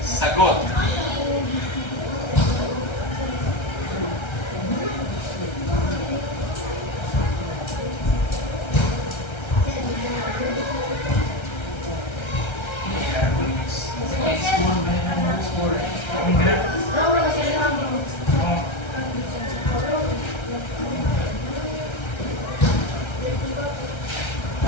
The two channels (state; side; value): late; right; 1.3 ms